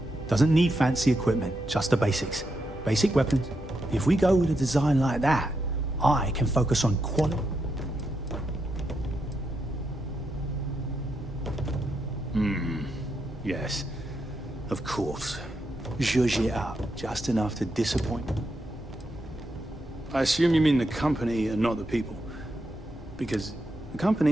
Doesn't need fancy equipment, just the basics. Basic weapons. If we go with a design like that, I can focus on quality. Yes, of course. Zhuzh it up, just enough to disappoint. I assume you mean the company and not the people. Because the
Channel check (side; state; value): both; normal; correlation 0.83